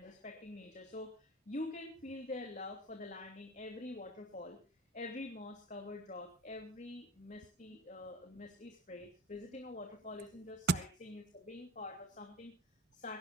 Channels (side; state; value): both; normal; correlation 0.38